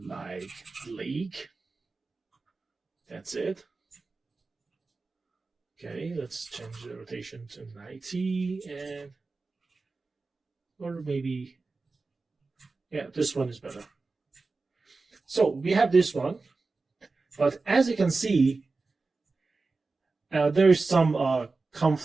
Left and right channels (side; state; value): left; quieter; 3.9 dB